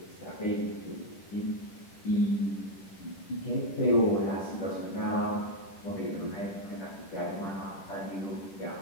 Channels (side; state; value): right; late; 10 ms